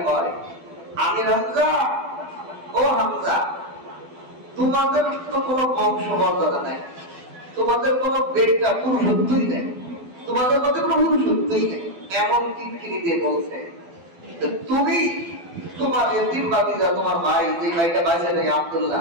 কয়, আমির হামজা, ও হামজা, তোমাদের তো কোনো বংশমর্যাদা নাই, তোমাদের কোনো বেটা পুরুষত্বই নেই, তোমাদের মধ্যে কোনো পুরুষত্বই নেই। এমন কিটকিরি দিয়ে বলছে, তুমি তোমার এতিম ভাতিজা, তোমার ভাই, যে ভাইটা বাঁচে নেই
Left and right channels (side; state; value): left; late; 12 ms